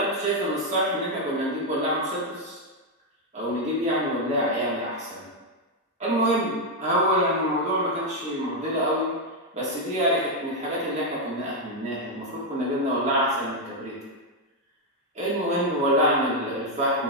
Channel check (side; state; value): both; normal; correlation 0.02